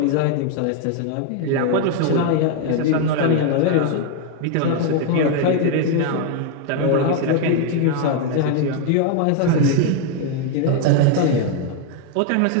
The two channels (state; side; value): different; both; correlation 0.01